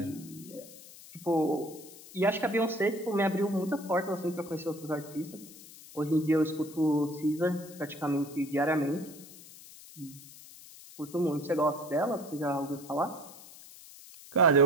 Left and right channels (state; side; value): noise; left; hiss, 18 dB below the sound